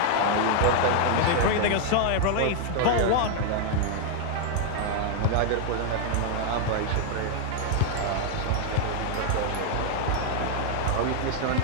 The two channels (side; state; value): both; different; correlation 0.00